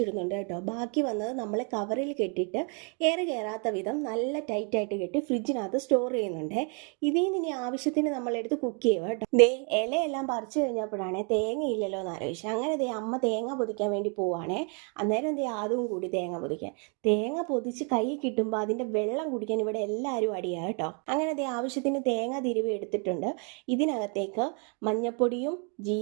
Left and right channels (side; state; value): left; quieter; 37.9 dB